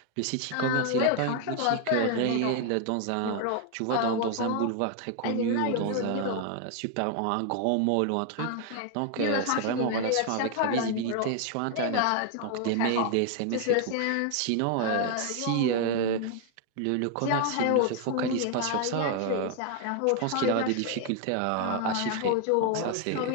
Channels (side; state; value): both; different; correlation 0.00